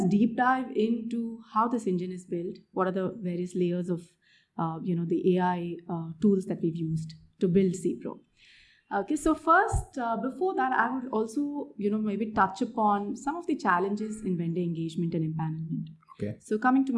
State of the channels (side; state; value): both; identical; correlation 1.00